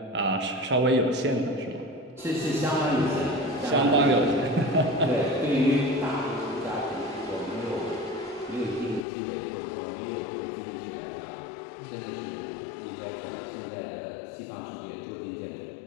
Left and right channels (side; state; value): right; drops out; at 9.0 s